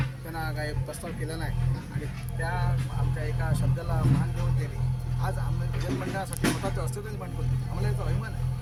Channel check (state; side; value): identical; both; correlation 1.00